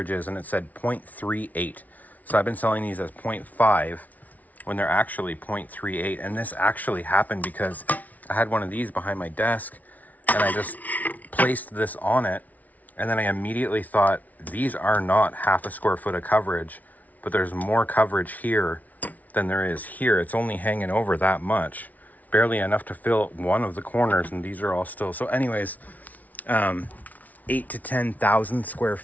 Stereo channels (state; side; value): late; right; 0.074 ms